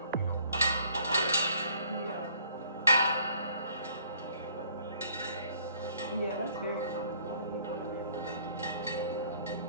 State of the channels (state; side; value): inverted; both; correlation -0.60